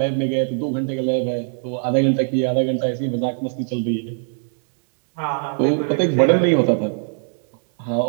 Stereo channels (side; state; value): left; silent; digital silence